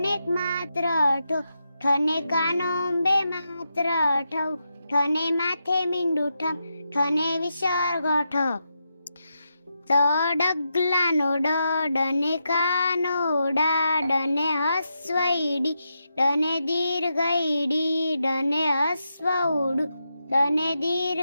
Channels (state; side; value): inverted; both; correlation -0.85